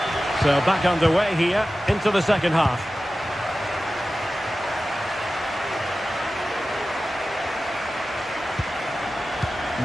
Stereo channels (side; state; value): both; normal; correlation 0.95